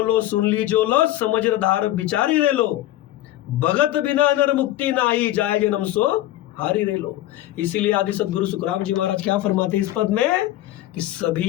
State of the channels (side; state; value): right; quieter; 14.6 dB